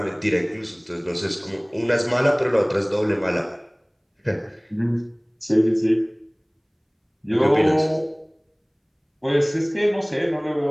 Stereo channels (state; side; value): identical; both; correlation 1.00